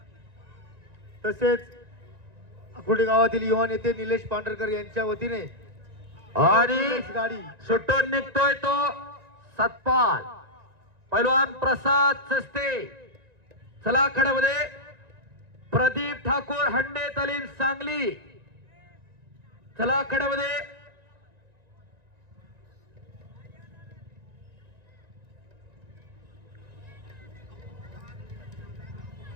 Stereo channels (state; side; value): late; left; 1.9 ms